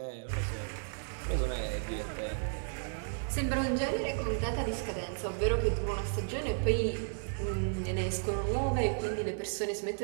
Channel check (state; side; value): silent; left; digital silence